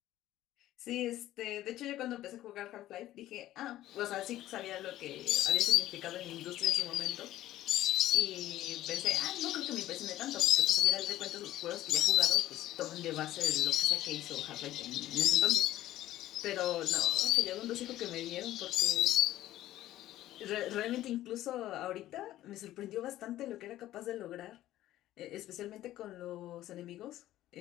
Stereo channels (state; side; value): quieter; right; 14.3 dB